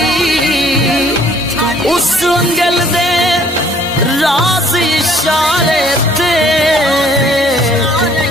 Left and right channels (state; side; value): normal; both; correlation 0.59